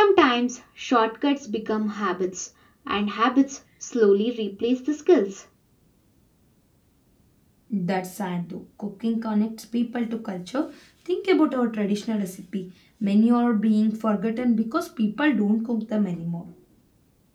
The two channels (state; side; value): identical; both; correlation 1.00